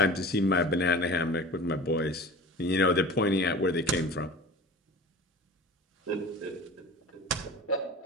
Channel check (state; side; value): normal; both; correlation 0.38